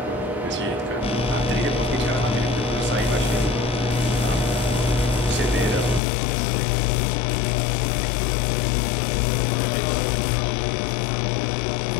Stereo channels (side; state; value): right; drops out; at 6.0 s